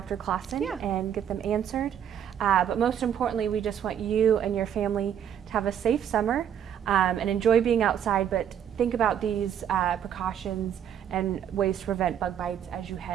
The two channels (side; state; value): left; quieter; 9.3 dB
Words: Clawson and get them answered. But most importantly, we just want you and your family to have a safe summer and enjoy being outside, but think about these precautions and ways to prevent bug bites as you